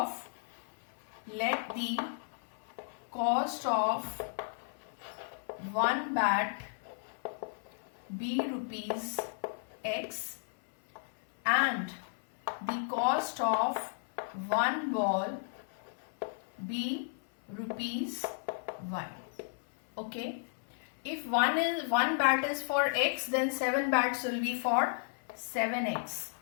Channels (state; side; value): silent; right; 55 dB below the other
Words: one bat be rupees X and the cost of one ball be rupees Y. Okay. If one bat is for X, then 7 bats will be for 7X